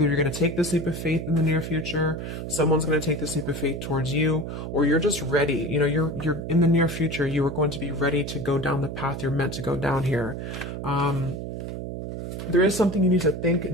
you're going to take this leap of faith in the near future, someone's going to take this leap of faith towards you, or you're just ready. You're in the near future. You are going to be ready to go down the path you're meant to go down here. There is something you need to think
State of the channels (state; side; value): noise; right; hum, 6 dB below the sound